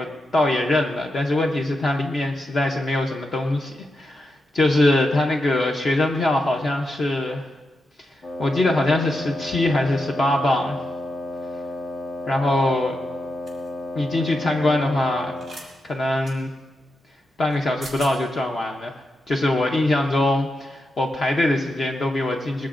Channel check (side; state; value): both; normal; correlation 0.87